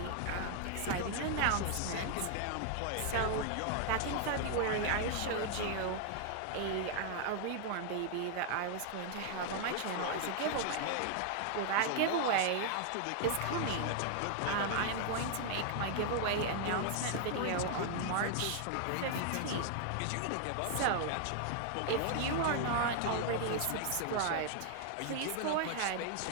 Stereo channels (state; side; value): different; both; correlation 0.00